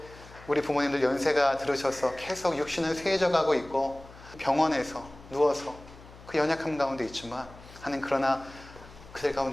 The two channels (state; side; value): noise; left; hum, 20 dB below the sound